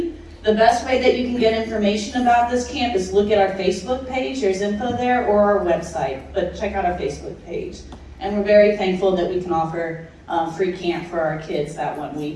The best way that you can get information about this camp is look at our Facebook page. There's info there, or our website, but check out our Facebook page. And we're very thankful that we can offer free camp for our kids that 1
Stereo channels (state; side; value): identical; both; correlation 1.00